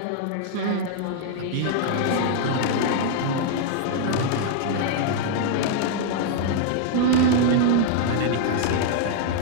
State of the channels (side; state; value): both; different; correlation -0.01